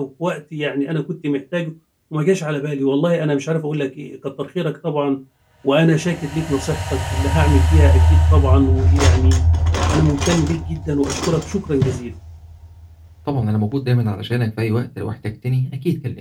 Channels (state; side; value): identical; both; correlation 1.00